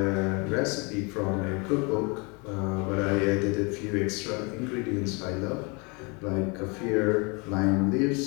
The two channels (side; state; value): right; quieter; 30.5 dB